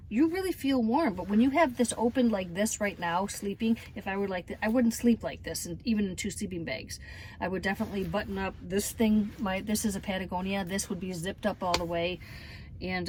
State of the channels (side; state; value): both; identical; correlation 1.00